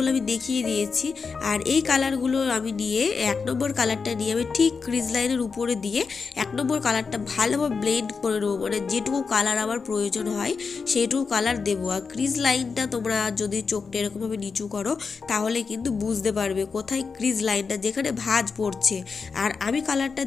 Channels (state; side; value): quieter; right; 5.1 dB